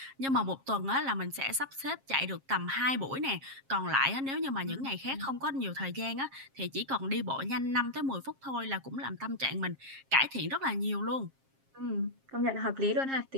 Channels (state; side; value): late; left; 7.4 ms